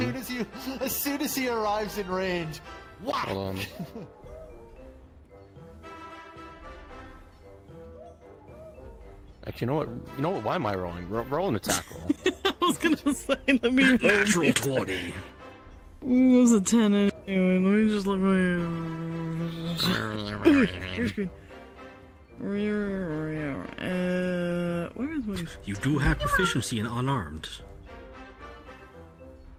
As soon as he arrives in range, whack! Hold on. Actually, you know what? Why am I rolling? Roll an attack roll. I was gonna say, let me roll. Natural 20. It was a 10 anyway. Let me just look. Your screen. Where is my? You do have proficiency in unarmed.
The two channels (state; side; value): identical; both; correlation 1.00